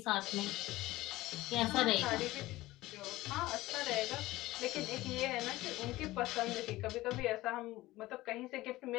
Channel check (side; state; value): right; quieter; 17.9 dB